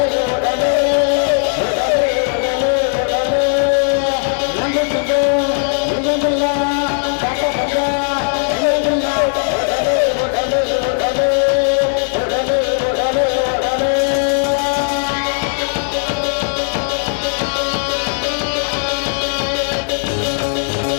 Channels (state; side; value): silent; right; digital silence